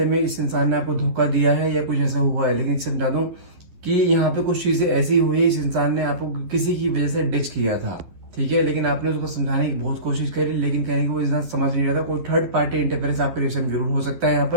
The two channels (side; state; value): left; late; 11 ms